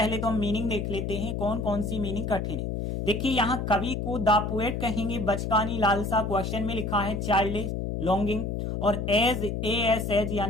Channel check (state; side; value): noise; left; hum, 2 dB below the sound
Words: तो हम मीनिंग देख लेते हैं, कौन कौन सी मीनिंग कठिन है। देखिए यहाँ कवि को द पोएट कहेंगे, बचकानी लालसा क्वेश्चन में लिखा है चाइल्डिश लॉन्गिंग, और एज